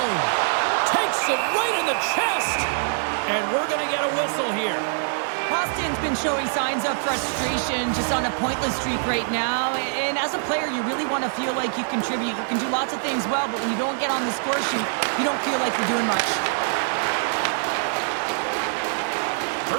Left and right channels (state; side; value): silent; left; 57 dB below the other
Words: Takes it right in the chest. And we're going to get a whistle here. Boston's been showing signs of frustration, just on a pointless streak right now. And as a player, you really want to feel like you contribute. You can do lots of things well, but when you don't get on the score sheet, you don't feel like you're doing much.